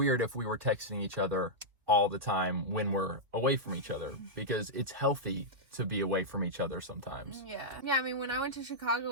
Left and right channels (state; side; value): late; left; 2.7 ms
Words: if we were texting each other all the time when we're away from each other, because it's healthy to be away from each other sometimes. Yeah, I mean, when I went to Chicago